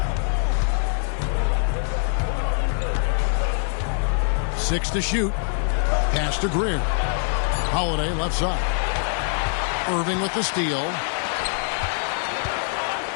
Six to shoot. Pass to Greer. Holiday left side. Irving with the steal.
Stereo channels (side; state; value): right; silent; 63 dB below the other